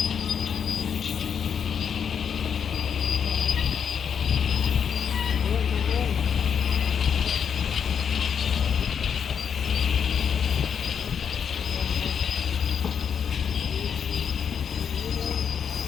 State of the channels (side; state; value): right; quieter; 7.4 dB